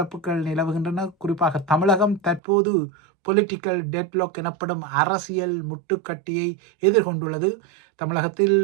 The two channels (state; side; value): drops out; left; at 2.4 s